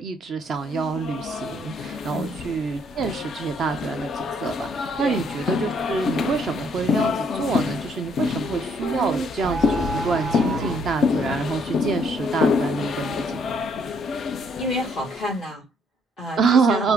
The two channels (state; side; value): normal; both; correlation 0.68